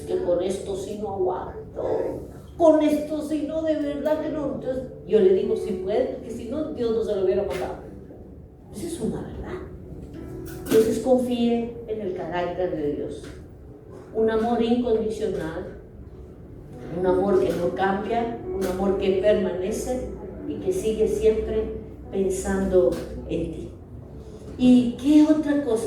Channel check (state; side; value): identical; both; correlation 1.00